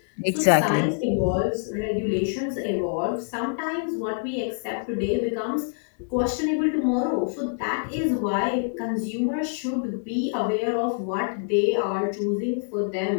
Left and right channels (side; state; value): right; silent; digital silence